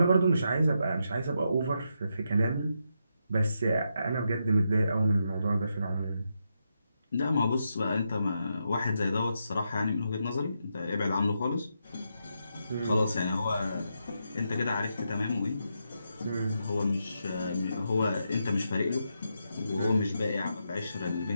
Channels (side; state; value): both; inverted; correlation -0.83